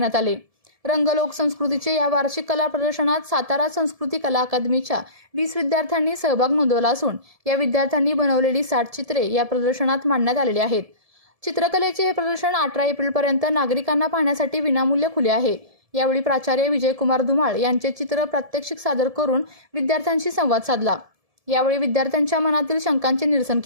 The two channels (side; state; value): left; late; 1.7 ms